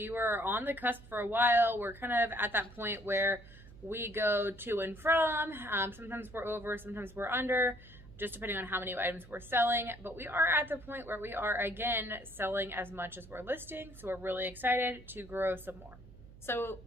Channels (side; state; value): right; noise; hum, 19 dB below the sound